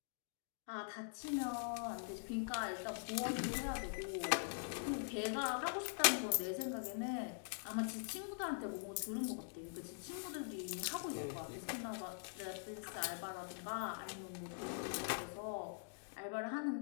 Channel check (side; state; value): right; silent; digital silence